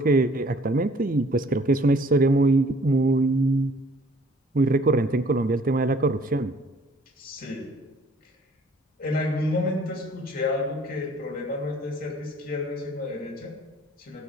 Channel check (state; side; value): normal; both; correlation 0.56